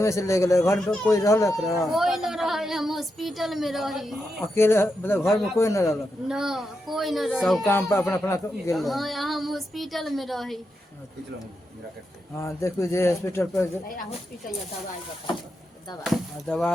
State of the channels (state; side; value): normal; both; correlation 0.86